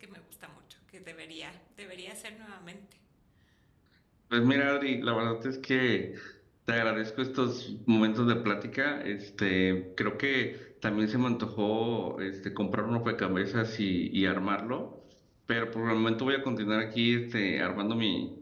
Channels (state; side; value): identical; both; correlation 1.00